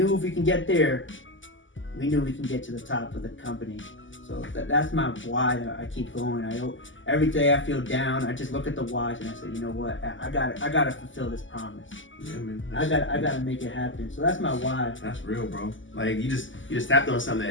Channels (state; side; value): late; right; 0.56 ms